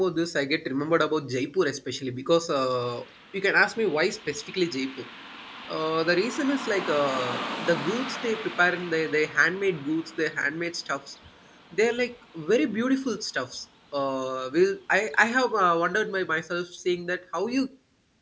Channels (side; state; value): both; identical; correlation 1.00